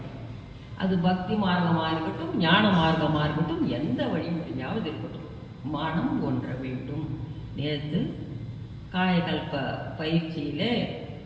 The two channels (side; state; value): both; identical; correlation 1.00